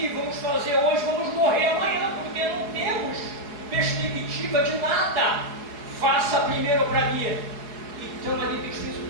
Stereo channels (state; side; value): late; left; 4.7 ms